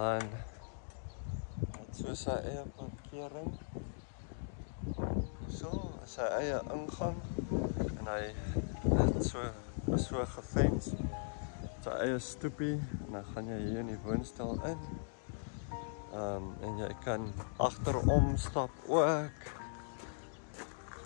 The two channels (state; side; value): silent; right; digital silence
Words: het so sy eie parkering. So, sy eie ingang en hy het so gefens. Sy eie stoepie en dan gaan jy hier in die woonstel in. En jy kan agterom stap ook.